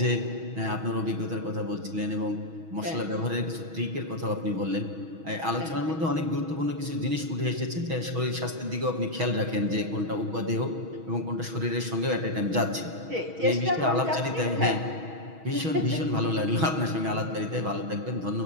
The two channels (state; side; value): late; left; 6.2 ms